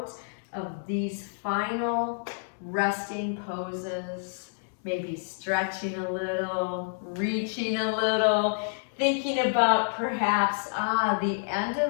of these final resting poses. Maybe stretching a little, reaching a little, thinking about perhaps, the end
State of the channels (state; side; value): silent; right; digital silence